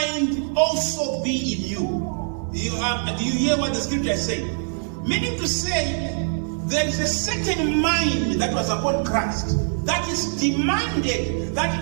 also be in you. Do you hear what the scripture is saying? Meaning to say, there is a certain mind that was upon Christ that is demanded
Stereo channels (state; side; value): silent; left; 63 dB below the other